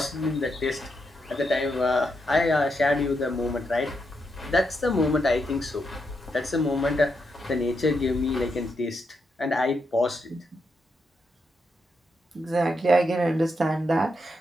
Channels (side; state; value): both; normal; correlation 0.82